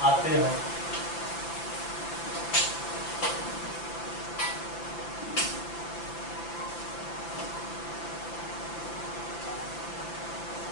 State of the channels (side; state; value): right; late; 6.0 ms